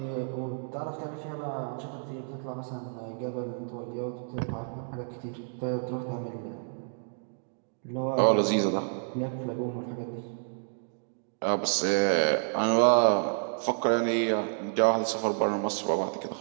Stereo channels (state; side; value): silent; left; digital silence